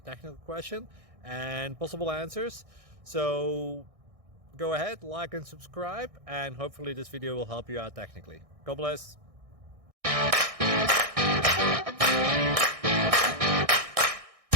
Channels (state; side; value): late; left; 1.6 ms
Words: question, and possible answers. So go ahead, like and subscribe, and hopefully this video will help you out technically. God bless.